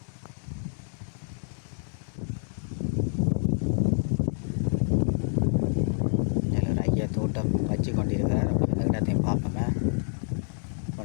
ஐயா தோட்டம் வச்சு கொண்டிருக்கிறார். அப்படி அந்த இடத்தையும் பார்ப்போமே,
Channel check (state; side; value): silent; right; digital silence